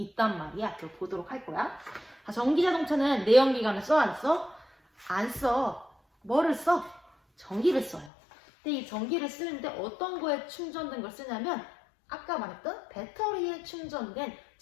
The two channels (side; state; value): right; drops out; at 8.1 s